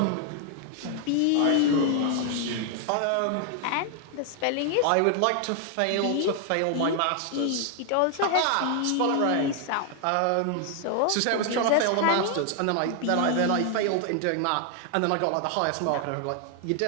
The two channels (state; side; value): different; both; correlation 0.00